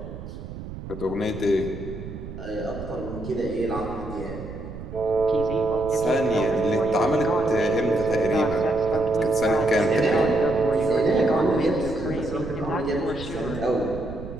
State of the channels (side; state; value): right; noise; rumble, 11 dB below the sound